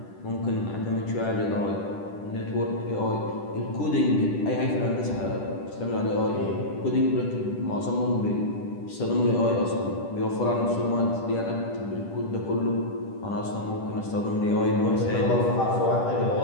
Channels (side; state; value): right; late; 10 ms